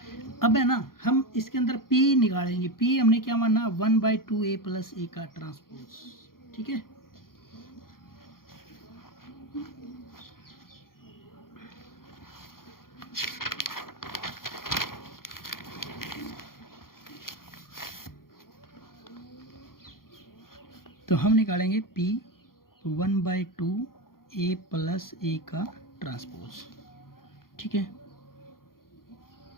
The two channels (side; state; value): right; late; 0.92 ms